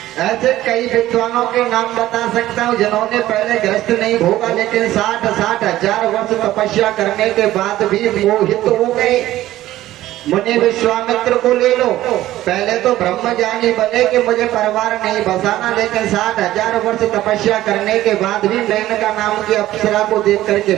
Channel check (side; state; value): left; quieter; 14.8 dB